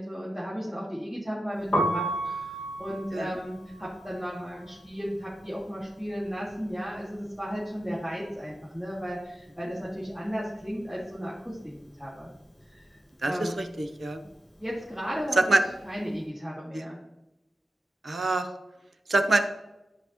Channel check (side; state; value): both; normal; correlation 0.91